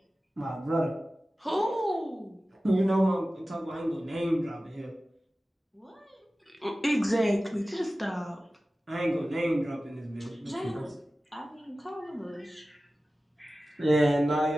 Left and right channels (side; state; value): both; normal; correlation 0.96